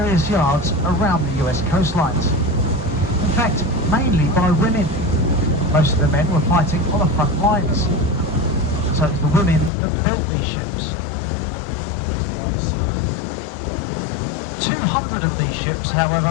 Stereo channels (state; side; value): drops out; right; at 9.7 s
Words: yards around the US coastlines. In fact, mainly by women. Most of the men were fighting on the front lines. So it's the women that built these ships. 200 of these ships,